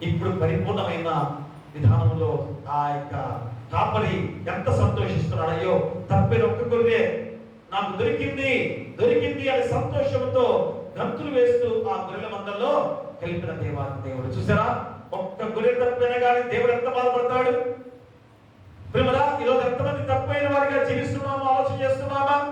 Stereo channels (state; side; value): identical; both; correlation 1.00